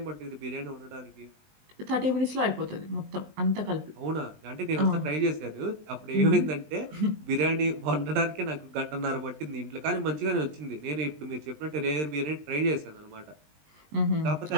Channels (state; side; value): late; left; 20 ms